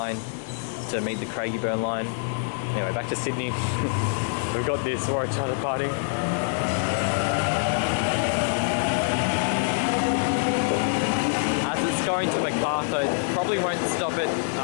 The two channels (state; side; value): silent; right; 61 dB below the other